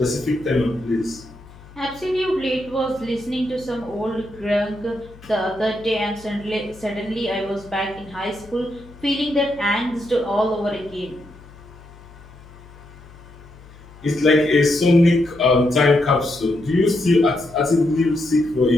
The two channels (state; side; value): noise; left; hum, 21 dB below the sound